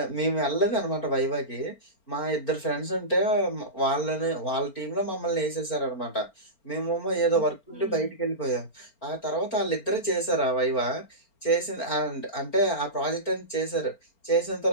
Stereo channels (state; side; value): late; right; 4.4 ms